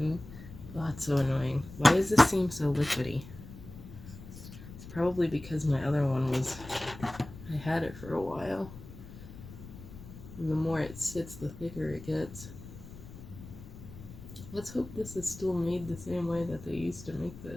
oh, it's so annoying. Why does this seem so liquidy? It's probably because my other one was, I had it for a while. And the more it sits, the thicker it gets. Let's hope this is still made the same way that they used to make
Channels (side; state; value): left; noise; rumble, 15 dB below the sound